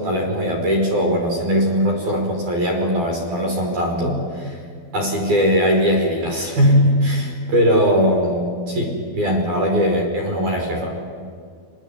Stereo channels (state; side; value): late; left; 12 ms